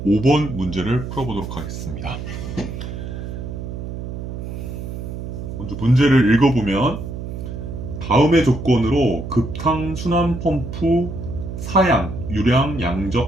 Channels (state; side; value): noise; right; hum, 7 dB below the sound